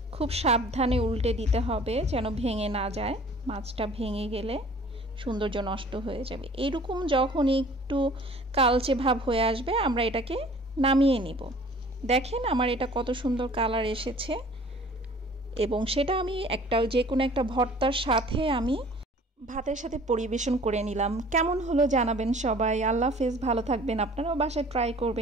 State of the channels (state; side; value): normal; both; correlation 0.50